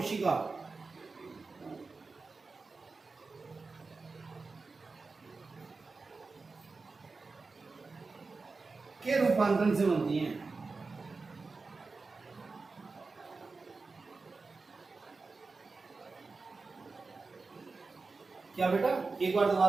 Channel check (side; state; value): left; quieter; 4.1 dB